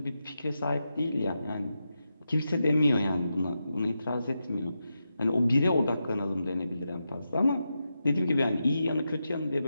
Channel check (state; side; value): inverted; both; correlation -0.88